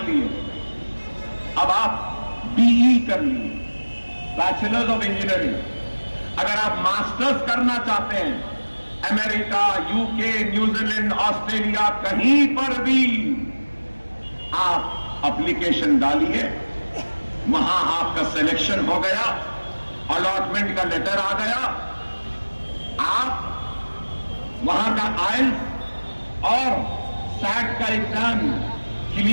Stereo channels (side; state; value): both; inverted; correlation -1.00